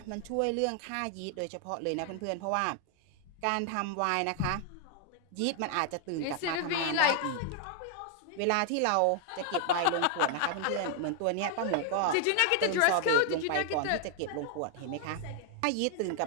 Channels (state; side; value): different; both; correlation 0.00